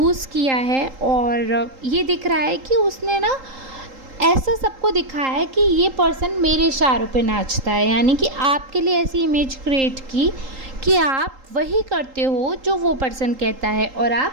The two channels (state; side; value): late; left; 3.8 ms